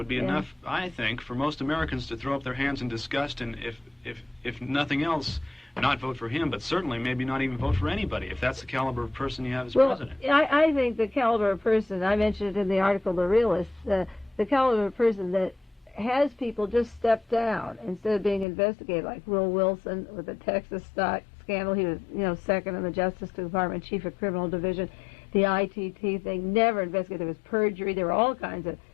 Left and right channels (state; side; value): drops out; right; at 18.4 s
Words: be enough, I think, for most Americans to throw up their hands in disgust, and if nothing else, not vote for him, but certainly maybe not even vote for anybody, if that's the caliber of person you have as president. I think the caliber of person, I mentioned it in the article, The Realist, the caliber of person that has people just step down instead of being investigated, like Will Wilson with the Texas stock scandal. He was, second in the Justice Department, chief of criminal division. The ITT thing, never investigated. There was perjury. There were all kinds of